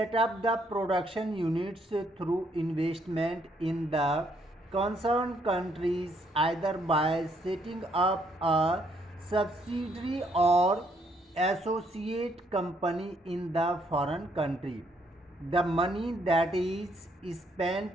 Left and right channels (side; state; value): both; normal; correlation 0.71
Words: up the production units through investment in the concern countries either by setting up a subsidiary or associate company in the foreign country. The money that is spent